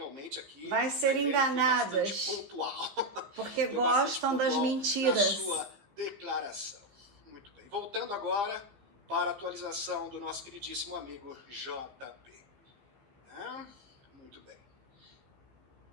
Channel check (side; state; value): left; late; 15 ms